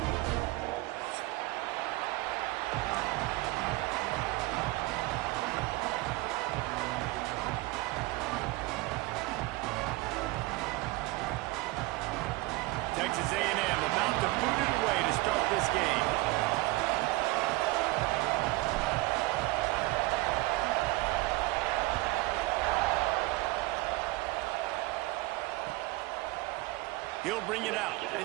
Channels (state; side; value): quieter; left; 21.1 dB